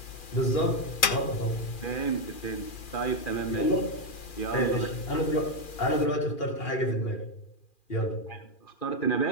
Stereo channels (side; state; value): right; late; 2.4 ms